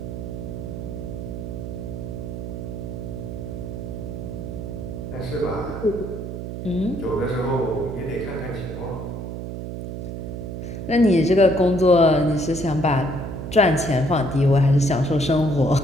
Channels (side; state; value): right; noise; hum, 7 dB below the sound